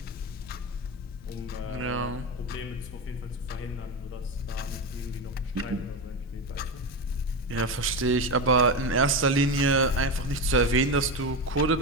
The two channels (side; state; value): both; normal; correlation 0.17